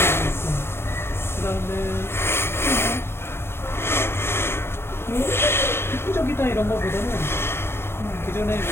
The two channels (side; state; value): right; late; 0.12 ms